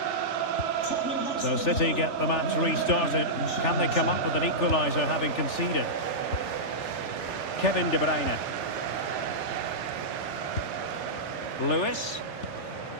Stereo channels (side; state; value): right; late; 3.4 ms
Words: So City get the match restarted. Can they come up with an equaliser having conceded? Kevin De Bruyne. Lewis.